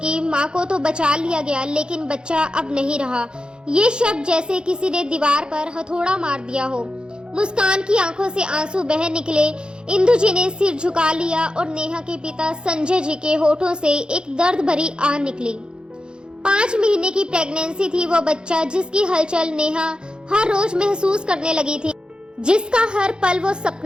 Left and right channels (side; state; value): left; late; 0.049 ms